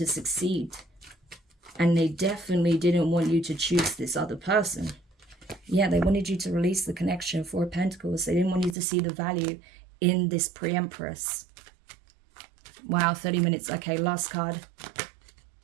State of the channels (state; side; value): drops out; left; at 8.8 s